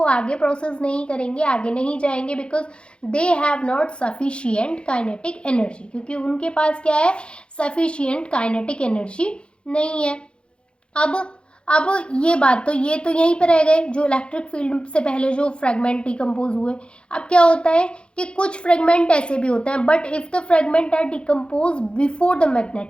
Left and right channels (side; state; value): right; late; 0.056 ms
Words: आगे प्रोसेस नहीं करेंगे, आगे नहीं जाएंगे, because they have not sufficient kinetic energy, क्योंकि उनके पास क्या है, सफिशिएंट काइनेटिक एनर्जी नहीं है। अब ये बात तो ये तो यहीं पर रह गए जो इलेक्ट्रिक फील्ड से पहले जो फ्रेगमेंट डिकम्पोज हुए। अब क्या होता है कि कुछ फ्रेगमेंट ऐसे भी होते हैं, but if the fragment are decompose before the